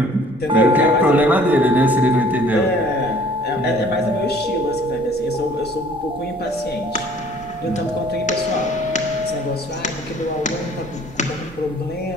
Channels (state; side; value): noise; right; rumble, 25 dB below the sound